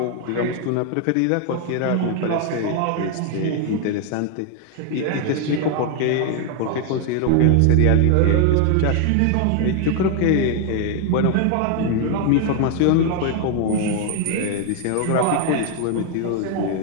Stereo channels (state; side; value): different; both; correlation 0.00